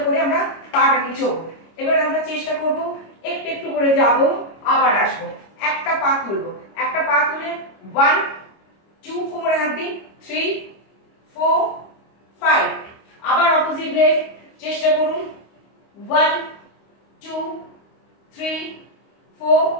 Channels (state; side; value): late; right; 25 ms